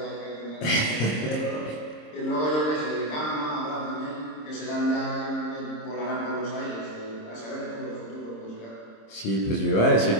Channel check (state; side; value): late; right; 26 ms